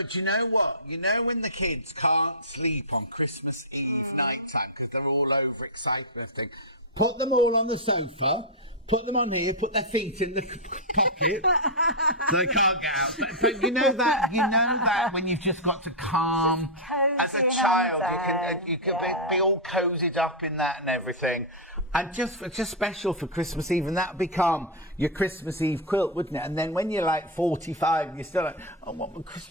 you know what? You know when the kids can't sleep on Christmas Eve night time because they're all overexcited and everything, put them all on the sofa, put them on here, put their feet in the pocket so they can't get out. But you know that when you've just got to calm, as a child, you can be all cozied up in that and everything. And just special for Christmas Eve, and that would become your Christmas Eve quilt, wouldn't it? And then when you're like 45, you're still like, I want my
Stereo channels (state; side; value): normal; both; correlation -0.06